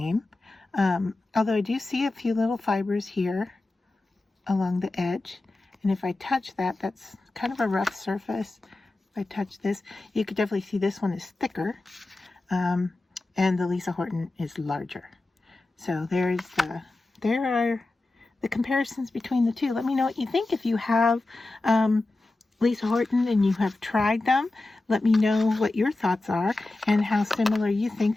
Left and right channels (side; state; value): right; quieter; 3.0 dB